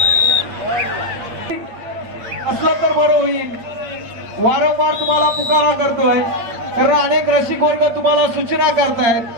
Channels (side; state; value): left; late; 8.5 ms